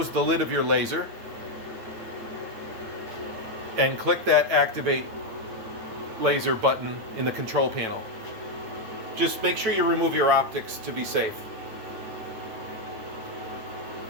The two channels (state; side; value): late; left; 8.9 ms